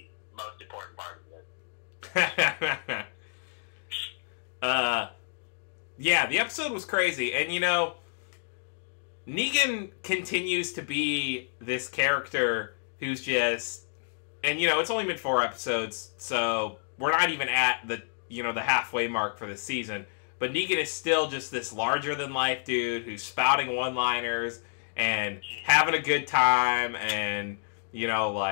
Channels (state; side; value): silent; right; digital silence